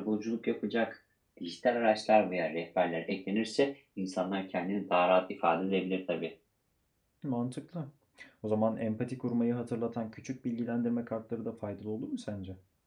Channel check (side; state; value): both; identical; correlation 1.00